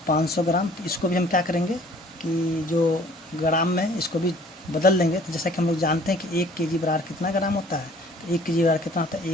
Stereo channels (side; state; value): both; normal; correlation 0.54